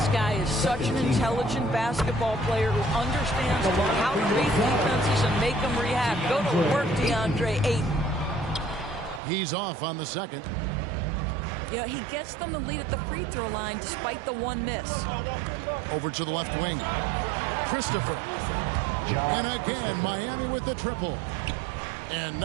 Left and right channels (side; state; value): left; drops out; at 9.2 s